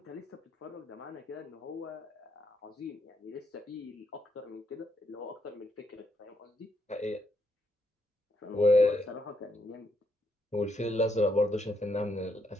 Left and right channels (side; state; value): both; normal; correlation 0.77